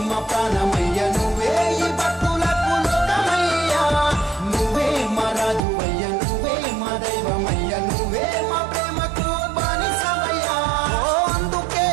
మా ప్రాణమయ్య నువ్వే ఈ భక్తులకు లోకమయ్యా నువ్వే మా రాజువయ్య నువ్వే మా దైవమయ్య నువ్వే మా ప్రేమకు బానిసవయ్యా అందుకే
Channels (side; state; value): left; drops out; at 5.6 s